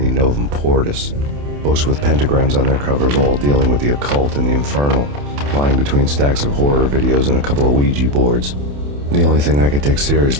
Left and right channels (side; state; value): left; late; 28 ms